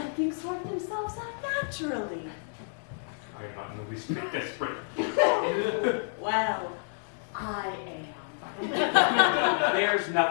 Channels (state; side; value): silent; right; digital silence